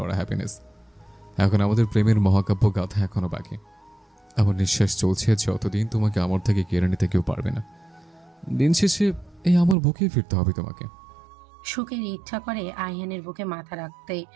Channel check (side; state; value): left; drops out; at 9.8 s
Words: হ্যাপিনেস। এখন আমাদের প্রেমের মহাকাব্য গাথা এখনো বাকি। আমার নিঃশ্বাস চলছে যতদিন তোমাকে আমার থেকে কেড়ে নিতে কেউ পারবে না। দিন শেষে এই আমার বুকেই ফিরতে হবে তোমাকে। সুখের ইচ্ছা করে আইহানের বুকে মাথা রাখতে,